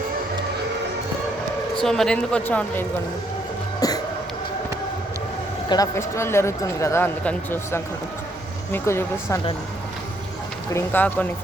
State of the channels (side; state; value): both; normal; correlation 0.71